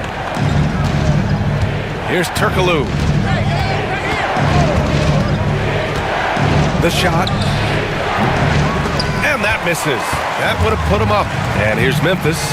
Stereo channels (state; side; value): identical; both; correlation 1.00